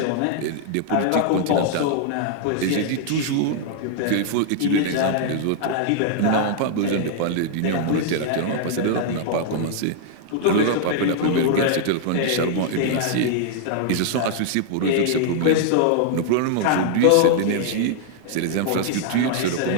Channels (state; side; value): different; both; correlation -0.01